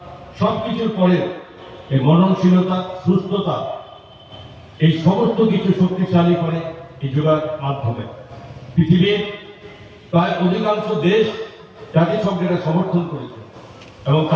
সব কিছুর পরে এই মননশীলতা, সুস্থতা, এই সমস্ত কিছু শক্তিশালী করে এই যোগার মাধ্যমে। পৃথিবীর প্রায় অধিকাংশ দেশ জাতিসংঘের সমর্থন করেছে এবং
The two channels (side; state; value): both; identical; correlation 1.00